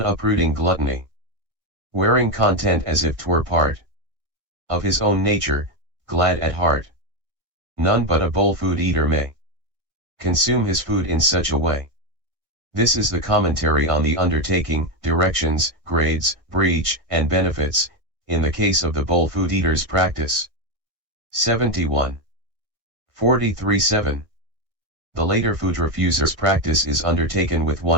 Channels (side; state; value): left; late; 1.6 ms